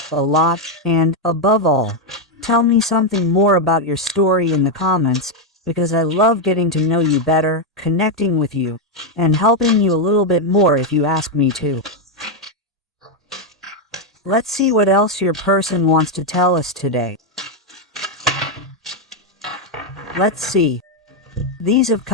lot, and, above all, tell me something more about your story in the comments, because I love getting to know you better, connecting with you, and helping you a little bit more if you ask me to. Let's see what else your person wants to tell us today. Let's see. These have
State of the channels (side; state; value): both; normal; correlation 0.03